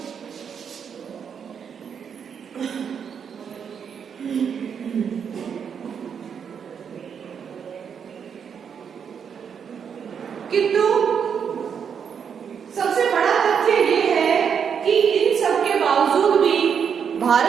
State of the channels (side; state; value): left; quieter; 7.2 dB